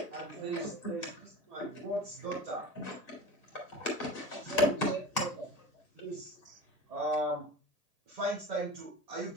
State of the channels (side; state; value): left; late; 1.8 ms